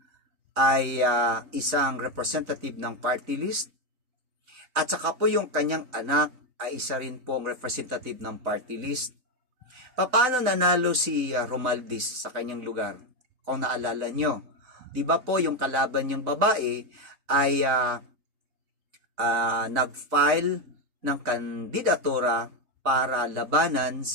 ay isang representative ng party list? At saka po yung kanyang anak ay isa rin po ang representative ng party list. Paano nanalo si Romualdez sa kanyang lugar? Kung naalala nyo, di ba po yung kalaban niyang babae ay nag-file ng kandidatura para labanan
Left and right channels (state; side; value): late; left; 4.0 ms